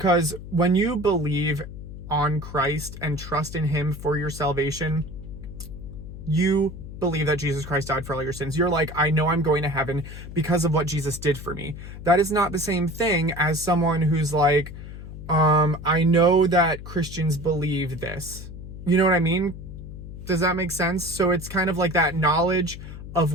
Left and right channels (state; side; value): noise; left; hum, 12 dB below the sound